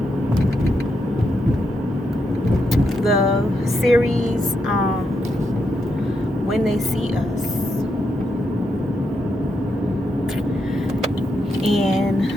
series When They See Us.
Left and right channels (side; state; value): both; normal; correlation 0.82